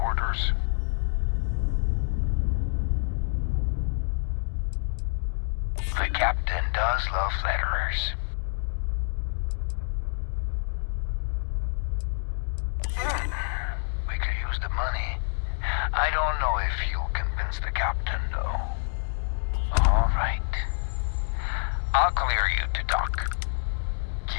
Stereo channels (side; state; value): right; silent; digital silence